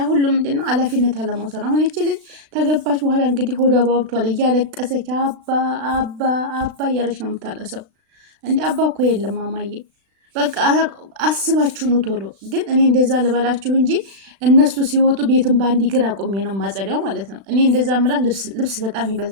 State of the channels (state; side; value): late; left; 36 ms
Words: ሁሉ ምንድን ነው ኃላፊነት አለመውሰድ። አሁን ይቺ ልጅ ተገባች በኋላ እንግዲህ ሆዷ ባብቷል። እያለቀሰች አባ አባ አባ እያለች ነው የምታለሰው። እንዲ አባ እኮ የለም ማማዬ፣ በቃ አስባችሁ ነው ቶሎ። ግን እኔ እንደዛ ልበላችሁ እንጂ እነሱ ሲወጡ ቤትን በአንድ እግር አቁሜ ነው ማጸዳው ማለት ነው። እኔ እንደዛ ምላት ልብስ በጣም